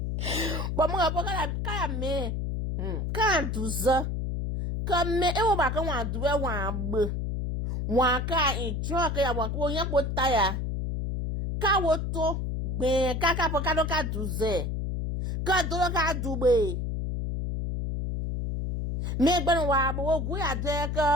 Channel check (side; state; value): left; noise; hum, 2 dB below the sound